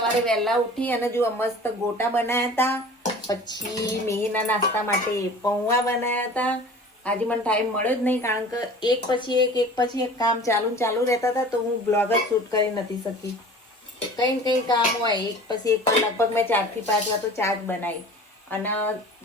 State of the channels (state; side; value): normal; both; correlation 0.42